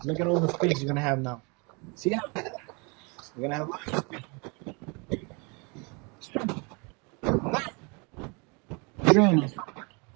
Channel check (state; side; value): quieter; left; 31.2 dB